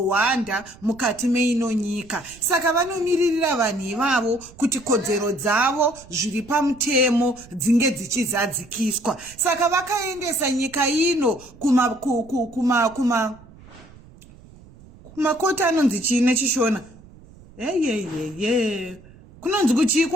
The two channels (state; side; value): noise; right; rumble, 22 dB below the sound